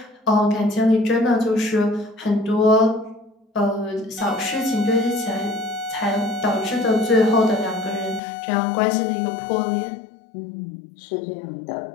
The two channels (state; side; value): drops out; right; at 8.2 s